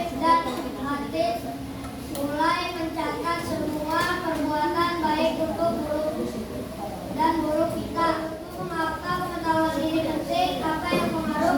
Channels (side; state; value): both; identical; correlation 1.00